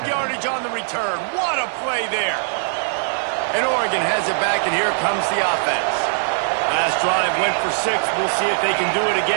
yardage on the return. What a play there. And Oregon has it back, and here comes the offense. Last drive went for 6. We'll see if they can do it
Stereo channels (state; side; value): silent; left; digital silence